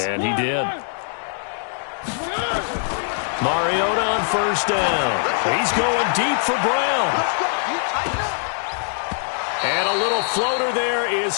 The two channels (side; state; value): right; silent; digital silence